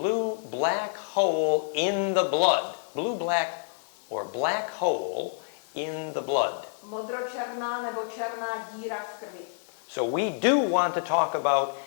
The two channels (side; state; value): right; silent; digital silence